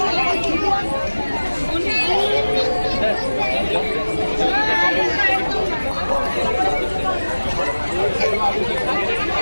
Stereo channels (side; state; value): both; inverted; correlation -1.00